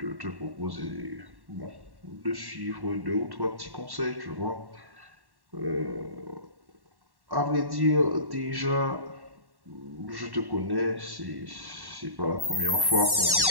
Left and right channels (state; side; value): late; left; 1.1 ms